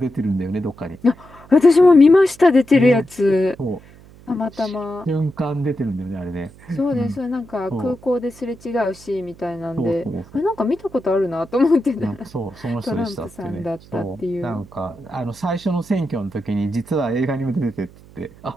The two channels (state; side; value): noise; right; hum, 23 dB below the sound